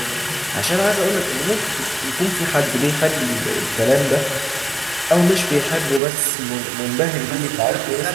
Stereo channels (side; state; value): left; drops out; at 6.0 s